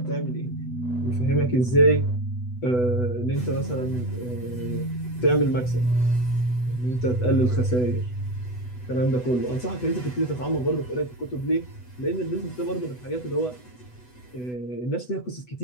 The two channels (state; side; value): late; right; 8.1 ms